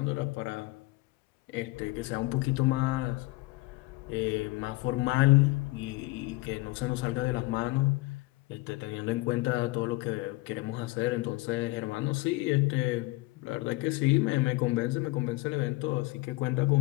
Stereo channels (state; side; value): quieter; right; 21.3 dB